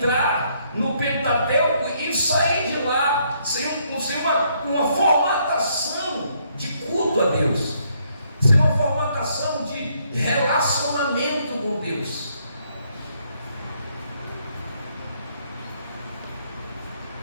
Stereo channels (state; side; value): inverted; both; correlation -0.70